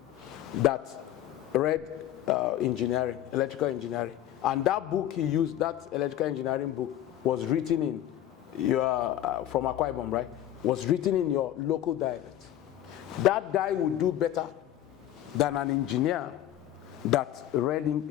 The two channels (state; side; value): quieter; right; 12.0 dB